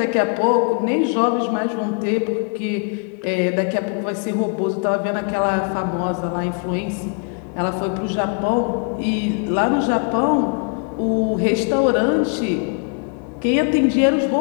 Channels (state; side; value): quieter; right; 39.2 dB